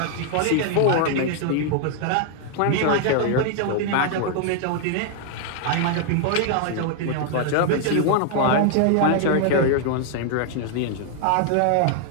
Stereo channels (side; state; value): both; different; correlation 0.00